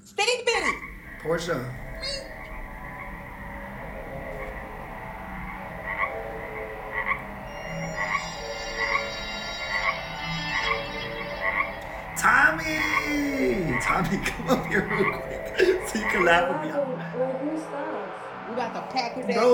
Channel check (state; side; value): identical; both; correlation 1.00